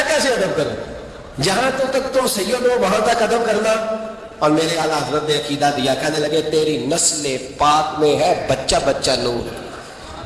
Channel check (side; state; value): both; identical; correlation 1.00